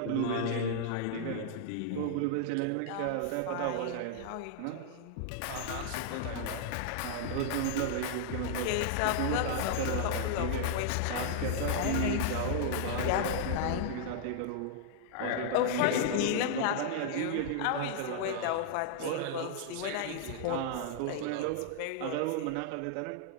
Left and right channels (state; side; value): different; both; correlation -0.01